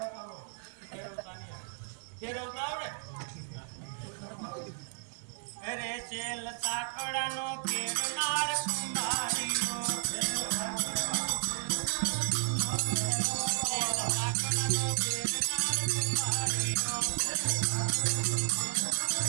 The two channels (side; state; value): left; silent; 56 dB below the other